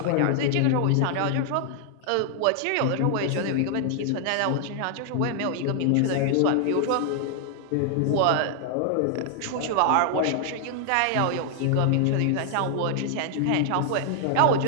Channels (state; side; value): different; both; correlation 0.00